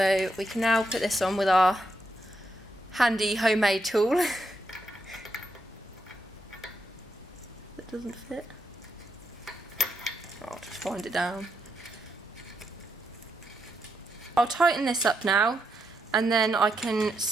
we can now put this on with our handy homemade tool. Doesn't fit. I'll just wind it down. I'll tighten this up now and then I can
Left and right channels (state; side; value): normal; both; correlation 0.81